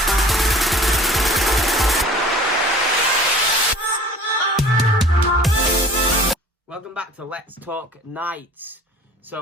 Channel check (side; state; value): both; normal; correlation 0.46